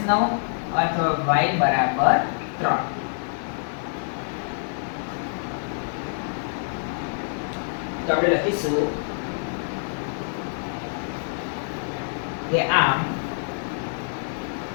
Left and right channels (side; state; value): right; silent; digital silence